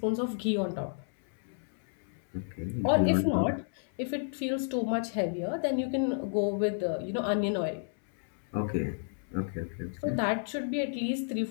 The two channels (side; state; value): right; silent; 57 dB below the other